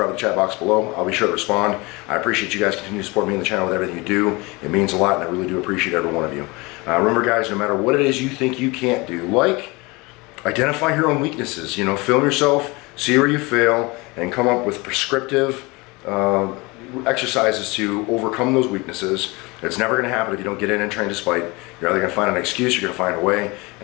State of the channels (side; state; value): right; quieter; 25.1 dB